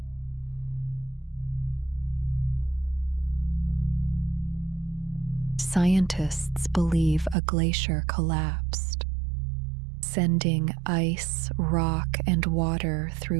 Scientists believe a glacier collapsed, sending ice, rock, and water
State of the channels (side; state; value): left; drops out; at 7.4 s